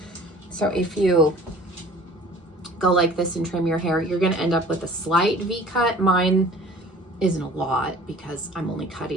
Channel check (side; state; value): both; normal; correlation 0.47